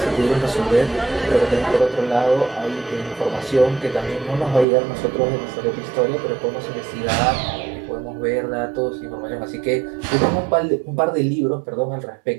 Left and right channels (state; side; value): drops out; left; at 4.7 s